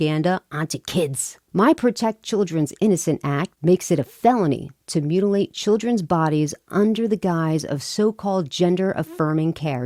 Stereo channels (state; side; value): identical; both; correlation 1.00